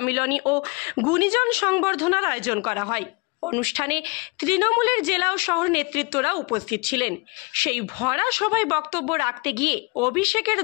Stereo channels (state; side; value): quieter; right; 29.4 dB